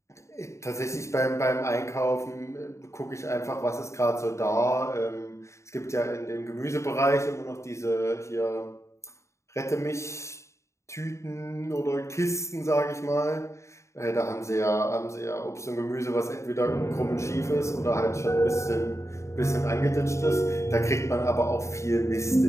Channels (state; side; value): late; right; 0.14 ms